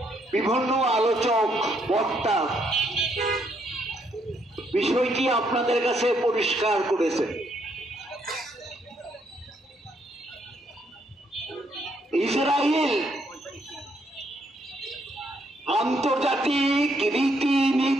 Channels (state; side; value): normal; both; correlation 0.73